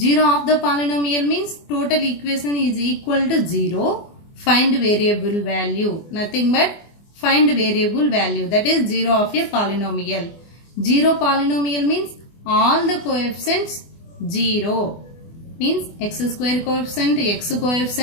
of the polynomial means total equation is equal to 0. Find variable value. Nothing but find variable value. That is 0 of a polynomial. Zero polynomial means all the coefficients 0. Means x square coefficient, x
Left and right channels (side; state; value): right; late; 24 ms